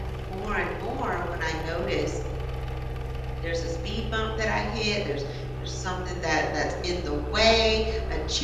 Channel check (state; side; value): identical; both; correlation 1.00